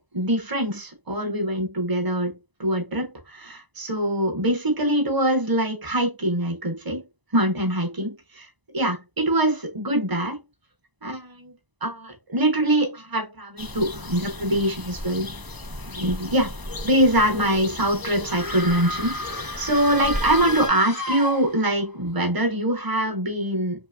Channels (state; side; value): late; left; 1.0 ms